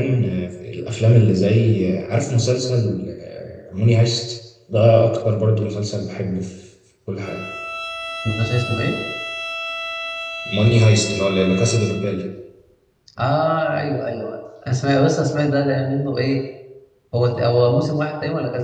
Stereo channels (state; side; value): identical; both; correlation 1.00